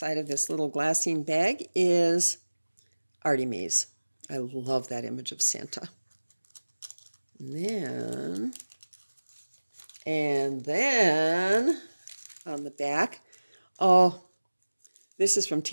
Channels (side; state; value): both; inverted; correlation -1.00